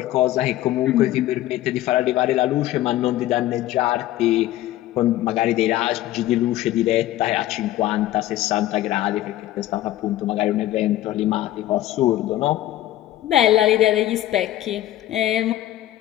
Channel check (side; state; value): right; quieter; 14.4 dB